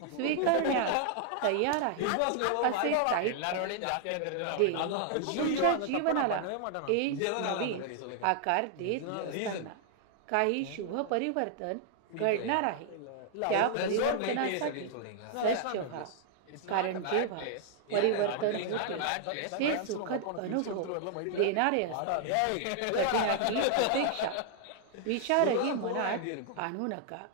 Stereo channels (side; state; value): both; different; correlation 0.00